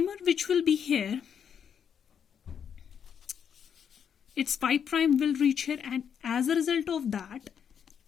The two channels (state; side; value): quieter; right; 7.8 dB